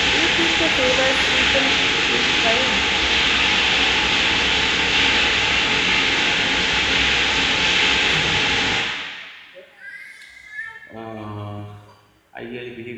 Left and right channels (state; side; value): identical; both; correlation 1.00